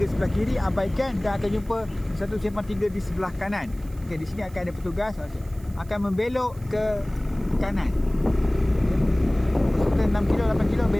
Sebelah kiri abaikan dan akan jumpa satu simpang 3 di sebelah kanan. Okey, di sini akan ada petugas akan membelok ke kanan. Peserta 6 km 8 km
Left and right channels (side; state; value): right; noise; hiss, 25 dB below the sound